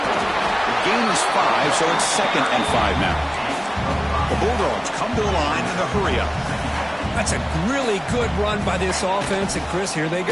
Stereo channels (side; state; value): both; identical; correlation 1.00